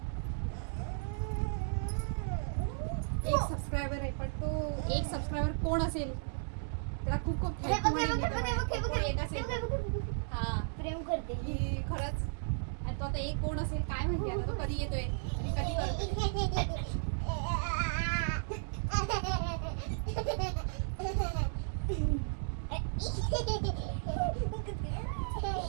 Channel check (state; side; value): silent; left; digital silence